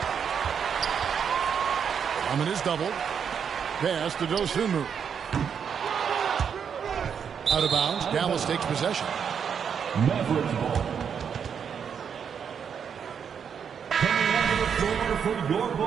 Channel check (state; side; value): quieter; left; 7.3 dB